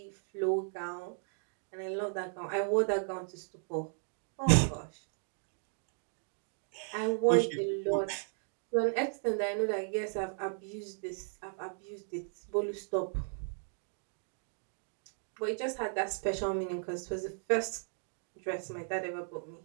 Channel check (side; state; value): left; silent; digital silence